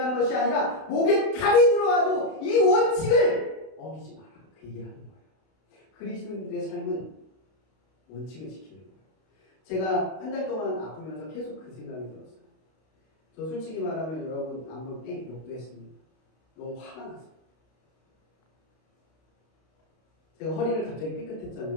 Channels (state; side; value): late; right; 32 ms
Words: 하는 것이 아니라 목에 칼이 들어와도 이 원칙을 어기지 마라. 그 얘기를 하는 거예요. 그리스도인들의 삶은 원칙을 지키는 거예요. 제가 한 달 동안 아프면서 계속 그 생각이 들었어요. 저 솔직히 말하면 여러분 안 볼 때 욕도 했습니다. 너무 화가 났어요. 제가 허리를 갑자기